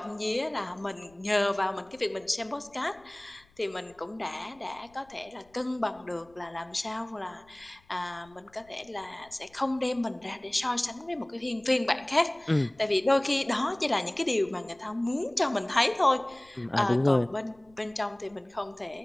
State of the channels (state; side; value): noise; left; rumble, 30 dB below the sound